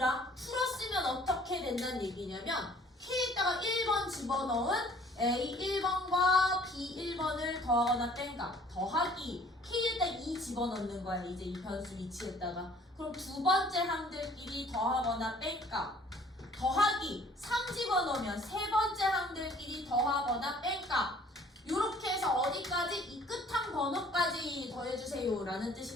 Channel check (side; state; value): both; normal; correlation 0.55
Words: 어떻게 된다는 얘기냐면 K에다가 1번 집어넣은 A 1번과 B 1번을 더하거나 뺀가. 더하기 K에다 2 집어넣는 거야. 이제 이 변수 위치에다가. 그럼 두 번째 항들끼리 더하거나 뺀가. 더하기 3 집어넣으면 세 번째 항들끼리 더하거나 뺀가. 요렇게 해서 어디까지? 이 끝항 번호까지 더해주세요 라는